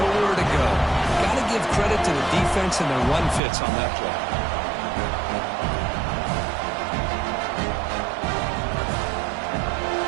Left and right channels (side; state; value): left; drops out; at 3.4 s